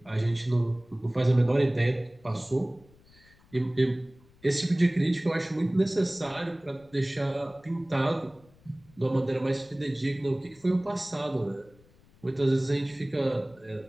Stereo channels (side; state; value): left; noise; rumble, 28 dB below the sound